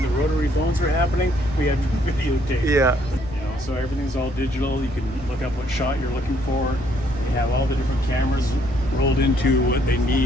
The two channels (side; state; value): left; noise; rumble, 15 dB below the sound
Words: the rotary phones were happening, we had videotape. Yeah. You know, so everything's all digital. You can look up what shot you're looking for. You have all the different cameras rolled into what they